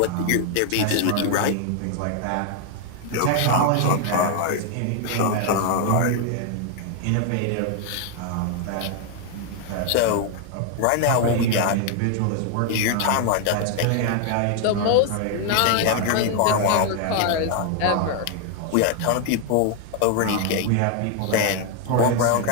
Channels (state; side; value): different; both; correlation 0.00